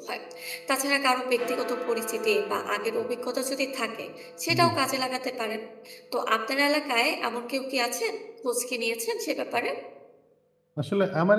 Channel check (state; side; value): identical; both; correlation 1.00